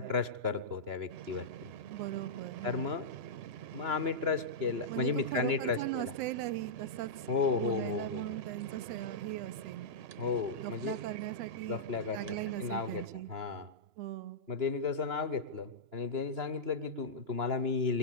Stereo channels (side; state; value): left; late; 2.9 ms